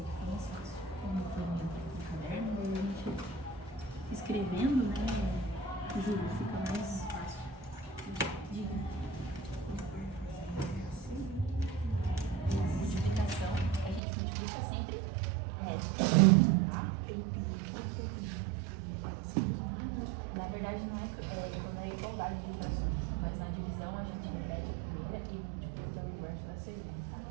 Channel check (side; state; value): left; drops out; at 14.0 s